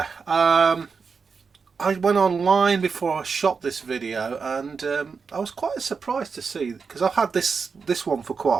I went online before I shot this video, and I was quite surprised to see, because I've had this one for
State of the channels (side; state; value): left; quieter; 5.3 dB